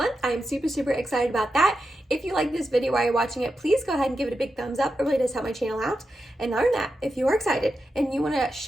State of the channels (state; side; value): normal; both; correlation 0.88